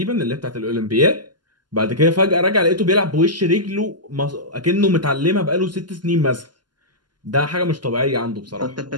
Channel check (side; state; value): left; late; 0.71 ms